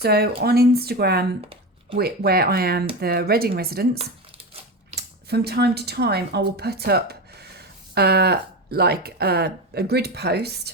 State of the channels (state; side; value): normal; both; correlation 0.21